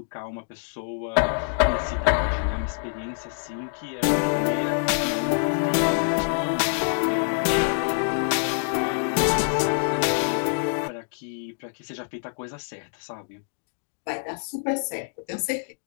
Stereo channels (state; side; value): silent; right; digital silence